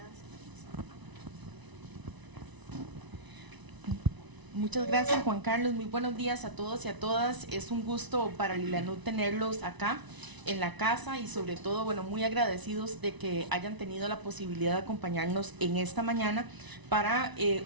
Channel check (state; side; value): late; left; 1.0 ms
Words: Muchas gracias, Juan Carlos. Muy buenos días a todos y a todas. Es un gusto para Lilanud tenerlos acá en la casa y sobre todo, bueno, muy agradecidos de que hayan tenido la posibilidad de acompañarnos en esta mañana para